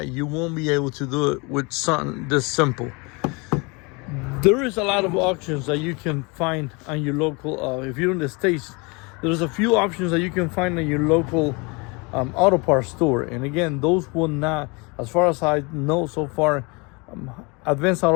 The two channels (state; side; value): quieter; right; 28.8 dB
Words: you won't be able to do it with something this simple. There is a lot of options that you can find on your local, if you're in the States, there's a few options that you can find in your local auto parts store. And again, those will not, as far as I know so far, Advanced